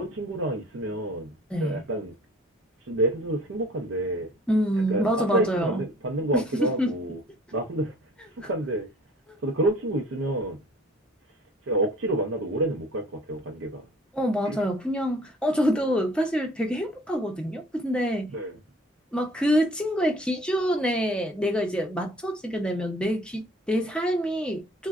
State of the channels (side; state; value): both; normal; correlation 0.52